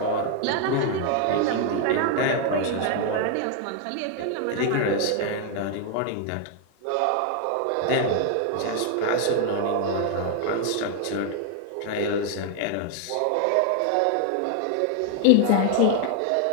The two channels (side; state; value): both; different; correlation 0.00